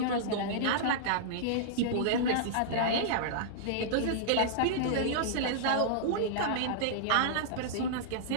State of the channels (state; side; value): different; both; correlation -0.02